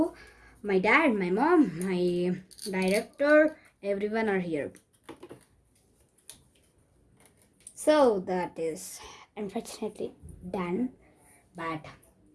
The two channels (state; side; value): identical; both; correlation 1.00